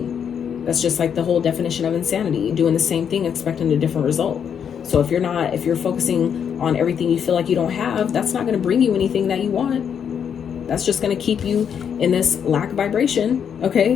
That's just like the whole definition of insanity, doing the same thing, expecting a different result. So if you're focusing on everything you feel like you don't have, that's not going to bring you anything that you want. That's just going to keep you in this lack vibration,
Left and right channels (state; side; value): quieter; right; 7.8 dB